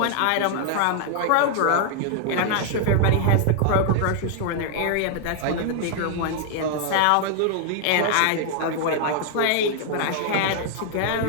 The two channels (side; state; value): both; different; correlation 0.00